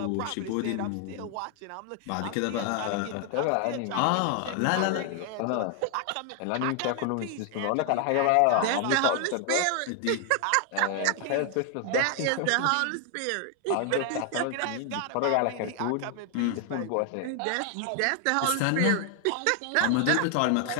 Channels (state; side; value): different; both; correlation 0.00